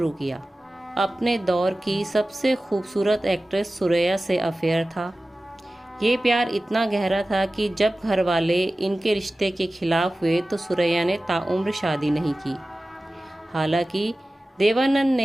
किया। अपने दौर की सबसे खूबसूरत एक्ट्रेस सुरैया से अफेयर था। ये प्यार इतना गहरा था कि जब घर वाले इनके रिश्ते के खिलाफ हुए तो सुरैया ने ताउम्र शादी नहीं की। हालांकि देवानंद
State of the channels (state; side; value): normal; both; correlation 0.96